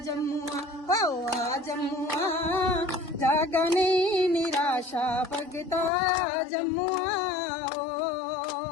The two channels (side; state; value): right; drops out; at 5.9 s